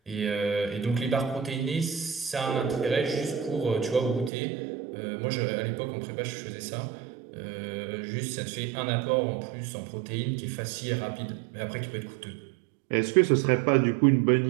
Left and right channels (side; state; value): left; drops out; at 4.3 s